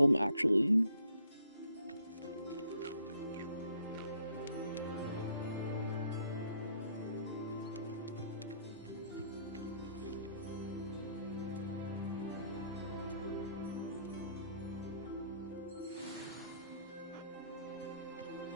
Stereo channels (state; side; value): inverted; both; correlation -0.66